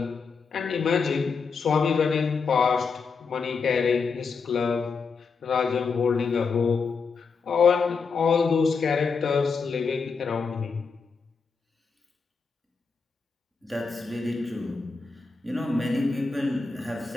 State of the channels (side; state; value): right; quieter; 5.0 dB